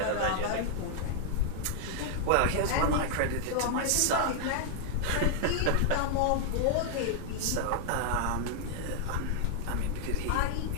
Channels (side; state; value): both; different; correlation 0.00